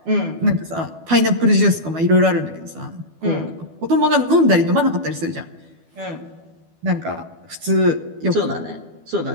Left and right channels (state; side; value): late; left; 12 ms